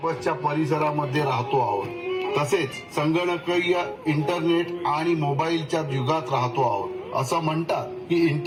परिसरामध्ये राहतो आहोत, तसेच संगणकीय इंटरनेट आणि मोबाईलच्या युगात राहतो आहोत. असं म्हणतात की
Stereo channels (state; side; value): identical; both; correlation 1.00